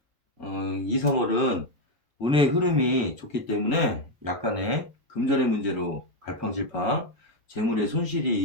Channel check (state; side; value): normal; both; correlation 0.06